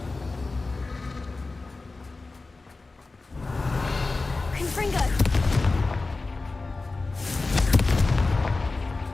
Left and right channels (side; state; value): right; quieter; 3.5 dB